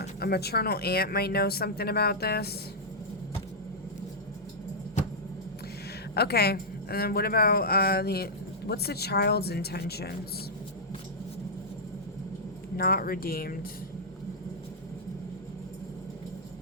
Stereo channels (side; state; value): both; normal; correlation -0.09